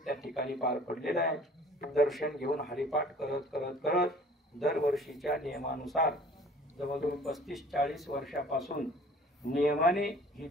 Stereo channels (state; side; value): normal; both; correlation 0.50